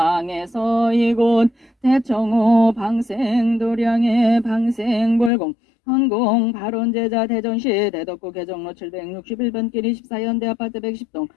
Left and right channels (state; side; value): drops out; right; at 5.3 s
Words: 이곳 대청호 방생 도량의 방생불공 헌공 발원제자 대전시 대덕구 개정로 761번 길 24현대 아파트 110동